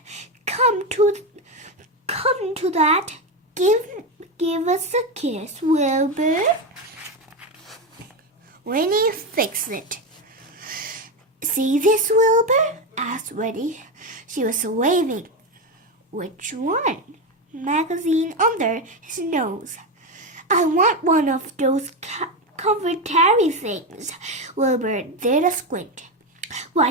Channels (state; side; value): normal; both; correlation 0.13